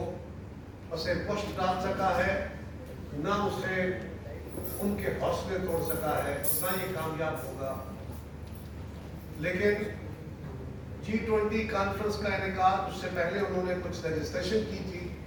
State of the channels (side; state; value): both; identical; correlation 1.00